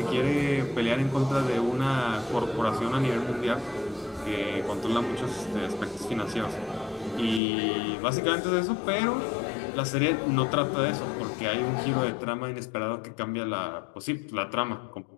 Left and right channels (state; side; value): drops out; right; at 7.4 s